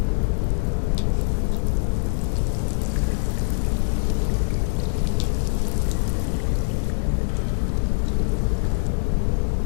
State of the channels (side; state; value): right; silent; digital silence